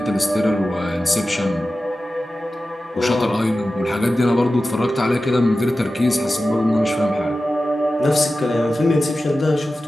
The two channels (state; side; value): normal; both; correlation 0.94